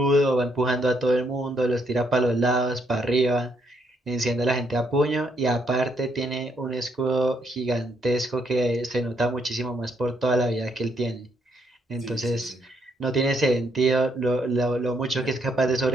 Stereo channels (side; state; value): both; normal; correlation 0.73